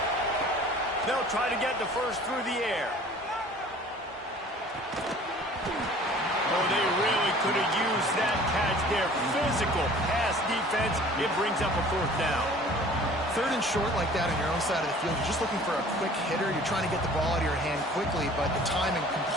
They'll try to get the first through the air. Oh, they really could have used that catch there. Physical pass defense. It brings up a 4th down. 3rd and short like that on your own side of the field. You're just looking for a quick hitter. You're trying to get the ball out of your hand quickly, but the timing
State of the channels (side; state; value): both; normal; correlation 0.48